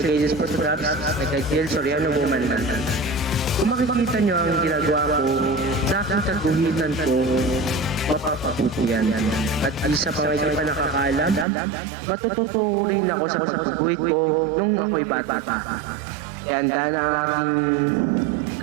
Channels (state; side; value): drops out; left; at 11.5 s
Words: Photographs na kay Jill Soriano Woman na. Kung makikita niyo ang ginagawa ko sa aking kaguhitan ko, mapapabuti yan. At isa pa nga hindi pa nakakaalam, matututo rin ako sa pagguhit ko nung ako'y bata pa. Kaya handa na ang aking